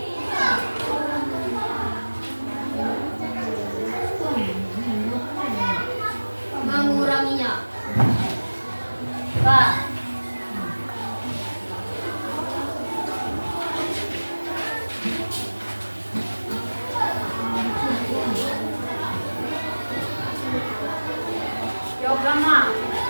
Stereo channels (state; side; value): inverted; both; correlation -1.00